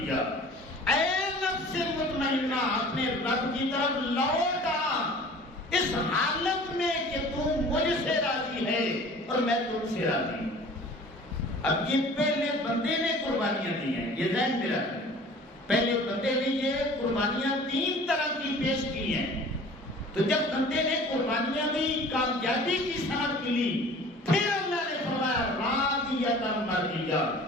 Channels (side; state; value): both; normal; correlation 0.45